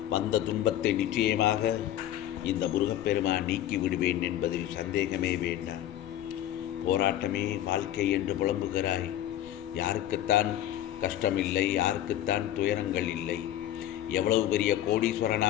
வந்த துன்பத்தை நிச்சயமாக இந்த முருகப்பெருமான் நீக்கி விடுவேன் என்பதில் சந்தேகமே வேண்டாம். போராட்டமே வாழ்க்கை என்று புலம்புகிறாய். யாருக்குத்தான் கஷ்டமில்லை, யாருக்குத்தான் துயரங்கள் இல்லை? எவ்வளவு பெரிய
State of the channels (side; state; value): right; quieter; 12.4 dB